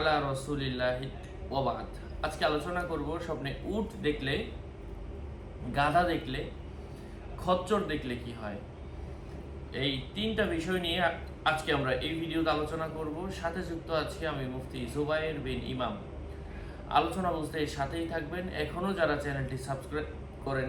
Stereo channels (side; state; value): both; identical; correlation 1.00